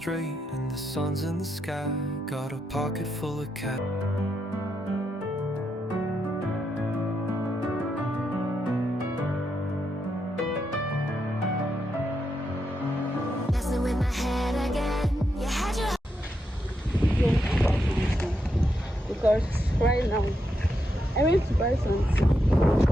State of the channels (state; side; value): normal; both; correlation 0.83